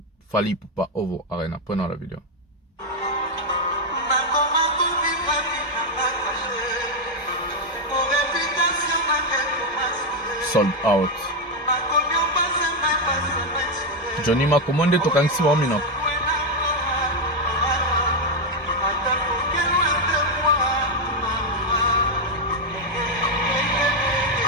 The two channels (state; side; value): normal; both; correlation 0.04